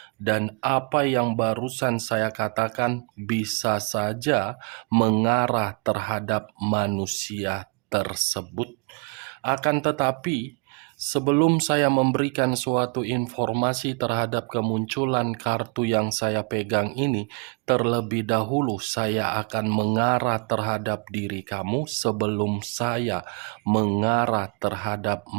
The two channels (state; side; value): quieter; left; 34.8 dB